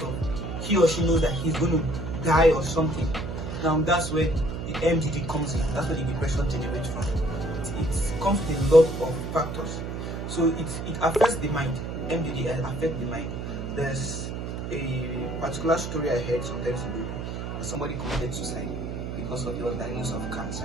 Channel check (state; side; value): noise; right; hum, 5 dB below the sound